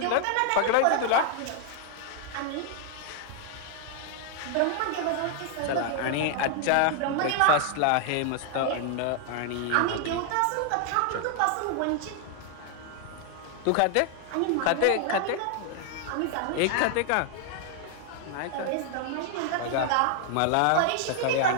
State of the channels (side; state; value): both; different; correlation 0.00